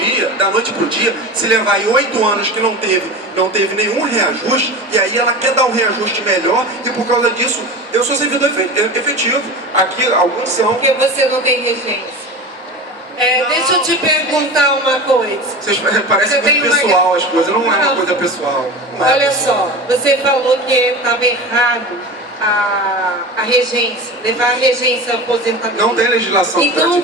dia, se levar aí 8 anos que não teve nenhum reajuste, e aí ela quer dar um reajuste melhor, e por causa disso, eu sou servidor efetivo. Aqui, alguns são. Porque você não tem regência. Deixa eu te perguntar uma coisa. Parece muito pessoal as coisas, não é uma coisa pessoal. Olha só, você falou que estava errado a regência, levar a regência à aposentadoria. Não tem legislação. Então o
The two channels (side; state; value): both; normal; correlation 0.30